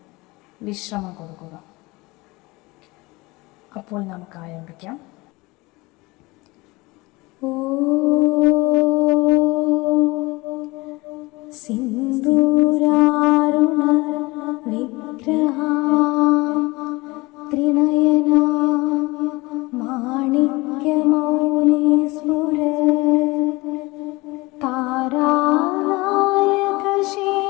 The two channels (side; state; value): right; quieter; 22.9 dB